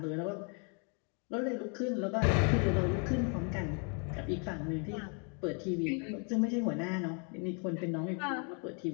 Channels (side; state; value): right; quieter; 38.3 dB